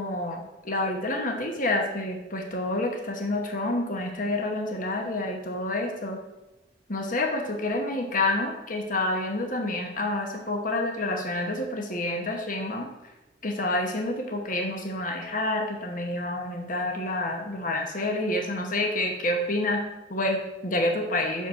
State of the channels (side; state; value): both; normal; correlation 0.20